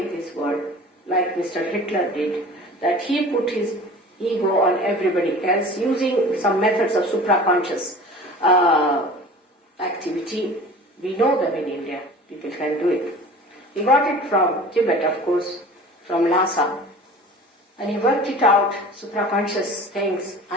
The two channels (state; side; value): normal; both; correlation 0.41